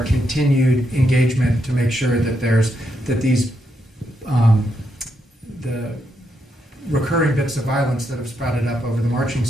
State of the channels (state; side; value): normal; both; correlation 0.80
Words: continued engagement to make sure that these the recurring bits of violence that have sprouted up over the marching